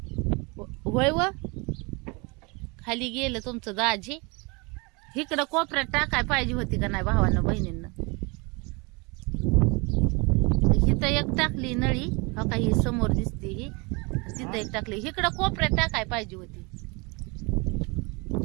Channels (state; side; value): quieter; left; 28.6 dB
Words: होय व खाली गेलं तुमचं दाजी. इकडं कोपऱ्यात टाकाय पाहिजे होती का नाही भावानं बहिणींना. इथं एक टाकली नळी हो का ही समोर दिसते ही. तिथं एक टाकली. इकडं कोपऱ्यात टाकाय पाहिजे होती.